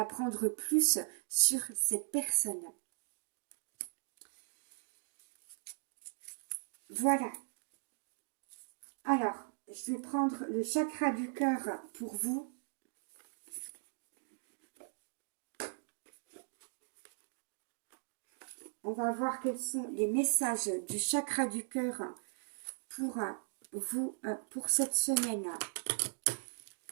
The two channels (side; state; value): left; silent; digital silence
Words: plus sur cette personne. Voilà. Alors, je vais prendre le chakra du cœur pour vous. On va voir quels sont les messages du chakra du cœur pour vous, pour cette semaine,